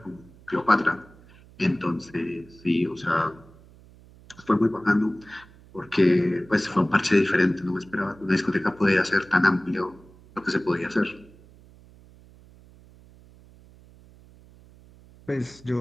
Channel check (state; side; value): noise; right; hum, 24 dB below the sound